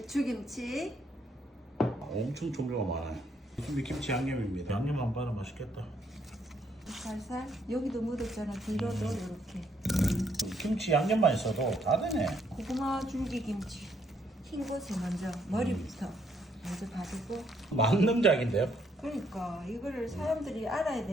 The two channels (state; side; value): normal; both; correlation 0.71